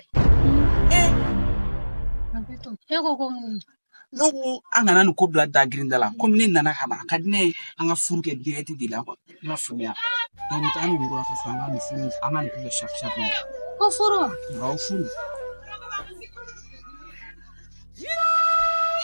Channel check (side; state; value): both; inverted; correlation -1.00